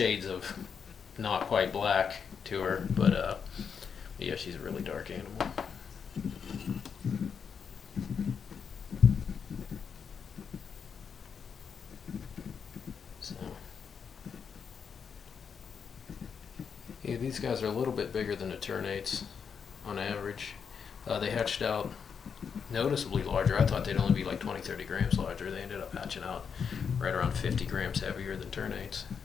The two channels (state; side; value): quieter; right; 6.6 dB